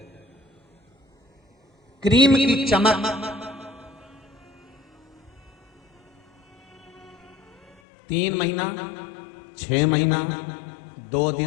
क्रीम की चमक 3 महीना, 6 महीना, 2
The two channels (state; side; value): drops out; right; at 7.8 s